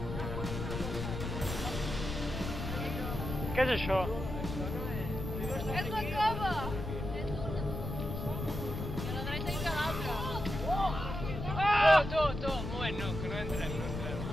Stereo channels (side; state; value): left; noise; rumble, 5 dB below the sound